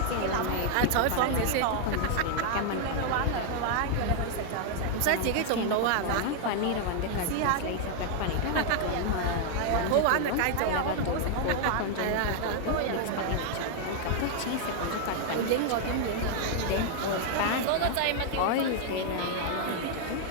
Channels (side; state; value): both; different; correlation 0.00